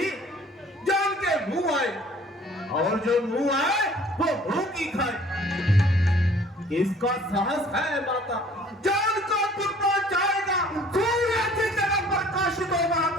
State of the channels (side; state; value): both; normal; correlation 0.53